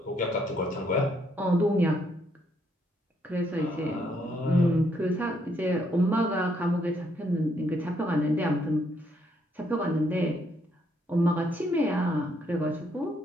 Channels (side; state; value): both; normal; correlation 0.72